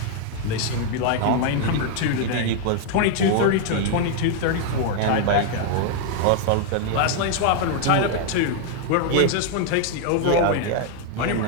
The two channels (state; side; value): different; both; correlation 0.00